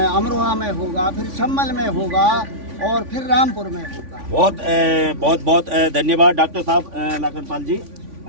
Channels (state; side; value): late; left; 3.5 ms